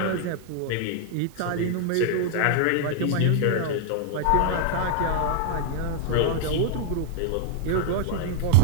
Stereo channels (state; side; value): different; both; correlation 0.00